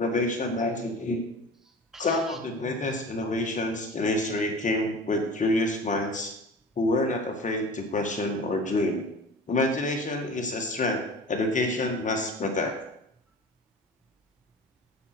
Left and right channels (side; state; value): both; normal; correlation 0.37